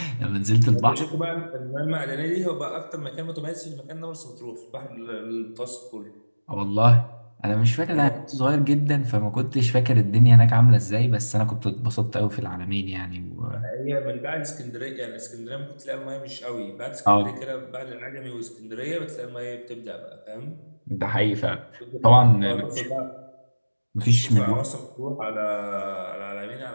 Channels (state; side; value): inverted; both; correlation -1.00